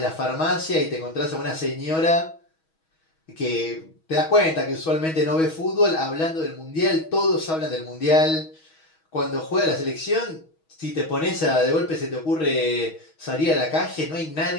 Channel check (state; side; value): late; right; 6.3 ms